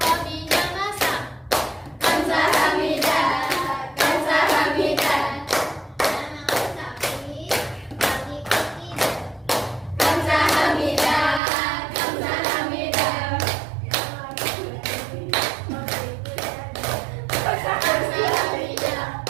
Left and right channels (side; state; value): left; drops out; at 11.4 s